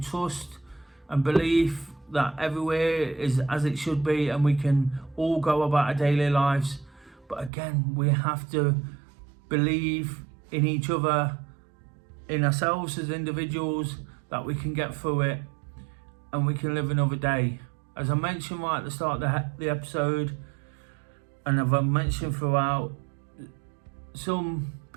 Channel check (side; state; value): left; drops out; at 7.5 s